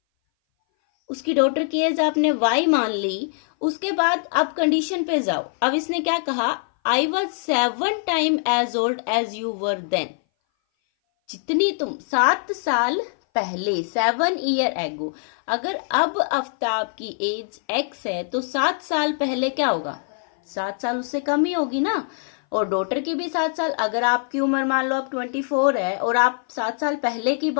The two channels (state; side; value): silent; right; 59 dB below the other